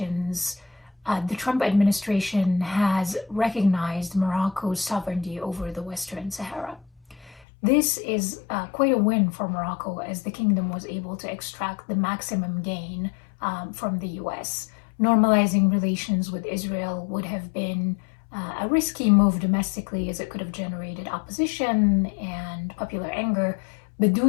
the Trump administration has recognized Morocco's sovereignty over the Western Sahara. This is quite a win for Morocco, as the kingdom was able to extract the maximum gain from the US. Normalizing relations with Israel would have been a risky move domestically, as it could have generated opposition and popular anger, but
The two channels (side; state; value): right; drops out; at 7.5 s